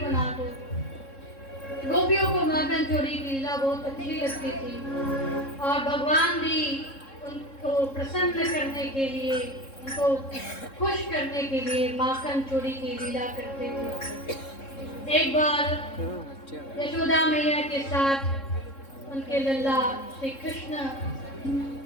दो। गोपियों को माखन चोरी की लीला बहुत अच्छी लगती थी और भगवान भी उनको प्रसन्न करने के लिए, उनको खुश करने के लिए माखन चोरी की लीला करते थे। एक बार यशोदा मैया के साथ उनके लल्ला श्री कृष्ण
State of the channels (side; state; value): right; late; 3.7 ms